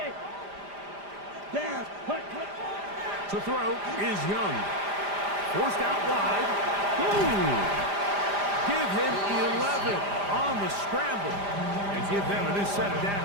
Down. Hut. To throw is Young. Forced out wide. Ooh. Give him 11 on the scramble. And give them a new set of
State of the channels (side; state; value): left; late; 5.0 ms